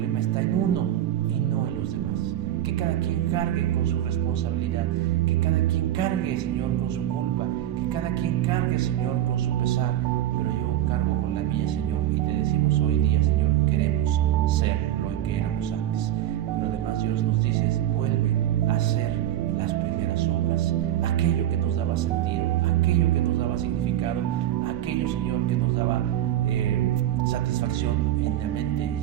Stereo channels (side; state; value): left; quieter; 12.4 dB